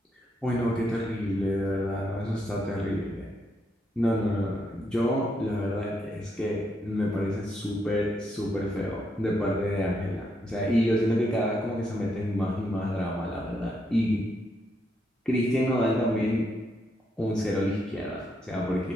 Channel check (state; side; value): normal; both; correlation 0.78